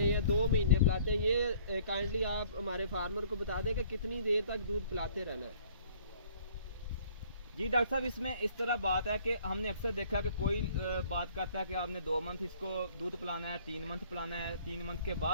या 2 महीने पिलाते हैं। ये काइंडली आप हमारे फार्मर को बता दें कि कितनी देर तक दूध पिलाते रहना है। जी डॉक्टर साहब, इसमें इस तरह बात है कि हमने अक्सर देखा कि कोई बात करता है कि आपने 2 मंथ इसको दूध पिलाना है, 3 मंथ पिलाना है, 3 मंथ के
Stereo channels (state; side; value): inverted; both; correlation -0.57